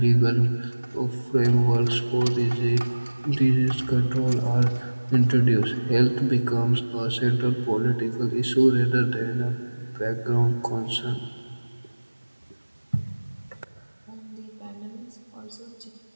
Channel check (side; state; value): both; inverted; correlation -1.00